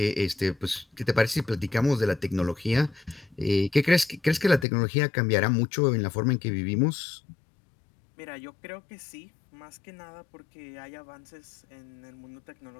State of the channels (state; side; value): drops out; right; at 4.7 s